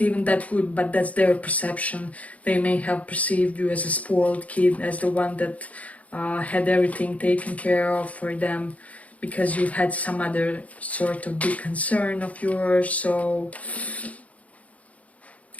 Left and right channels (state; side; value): late; right; 0.068 ms